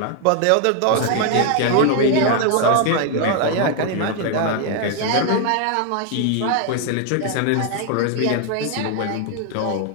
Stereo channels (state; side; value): different; both; correlation 0.00